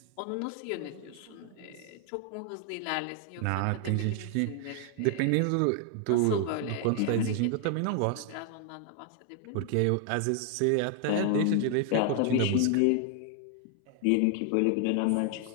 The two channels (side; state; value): both; different; correlation 0.00